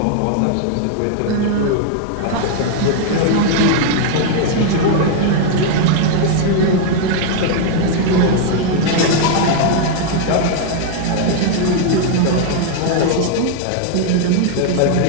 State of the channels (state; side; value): different; both; correlation 0.00